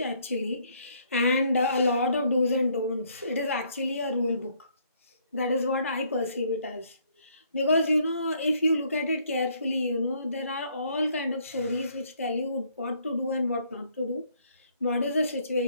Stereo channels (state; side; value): inverted; both; correlation -0.67